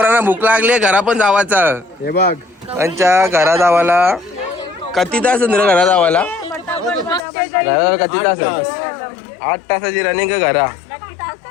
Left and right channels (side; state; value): right; drops out; at 7.2 s